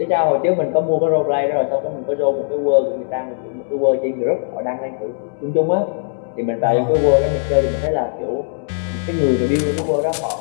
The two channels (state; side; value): silent; right; 66 dB below the other